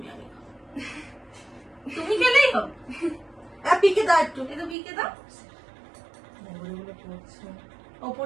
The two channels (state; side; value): drops out; left; at 4.8 s